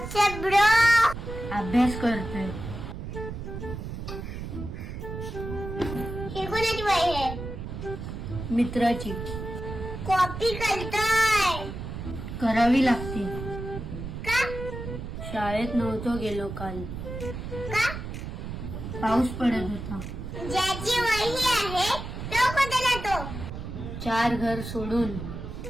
bro. अभ्यास करतोय. हे कोणाची वही आहे? मित्राची. कॉपी करतोय करावी लागते. का? शाळेत नव्हतो गेलो काल. का? पाऊस पडत होता. ज्याची वही आहे तो कोणता जातो? 4 घर सोडून.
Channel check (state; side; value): noise; right; rumble, 7 dB below the sound